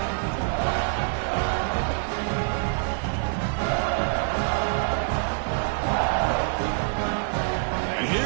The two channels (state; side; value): silent; left; 61 dB below the other